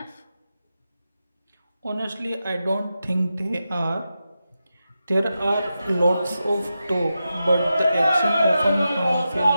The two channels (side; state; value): both; inverted; correlation -0.90